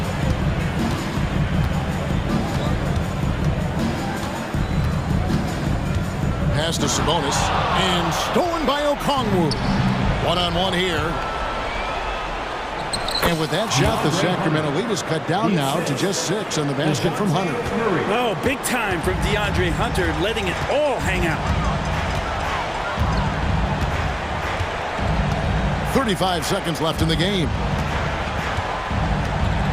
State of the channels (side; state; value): both; identical; correlation 1.00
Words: Pass to Sabonis, and stolen by Okongwu. One-on-one here. And with that shot, the Sacramento lead is cut down now to just 6 on the basket from Hunter. Oh, big time from DeAndre Hunter, letting it all hang out. 35 seconds left in the game.